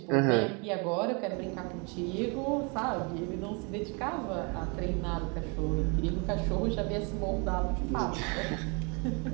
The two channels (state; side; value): quieter; left; 32.8 dB